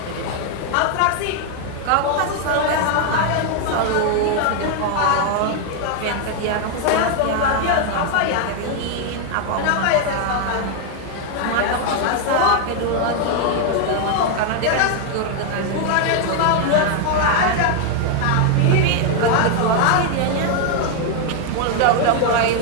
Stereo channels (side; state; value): both; different; correlation 0.00